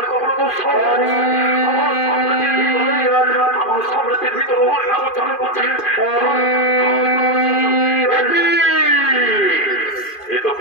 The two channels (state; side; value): late; right; 2.5 ms